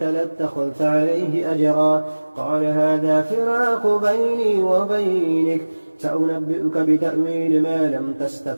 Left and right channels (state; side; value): inverted; both; correlation -1.00